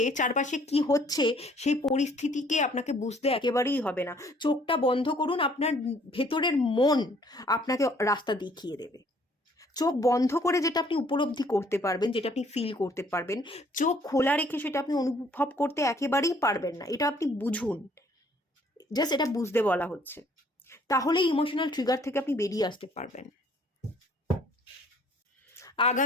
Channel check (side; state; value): both; normal; correlation 0.60